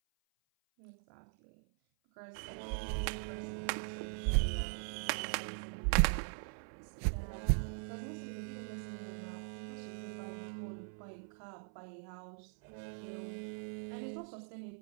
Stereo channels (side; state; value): left; silent; 51 dB below the other